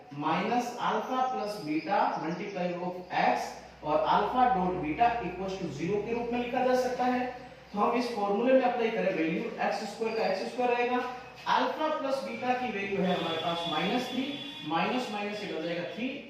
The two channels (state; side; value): identical; both; correlation 1.00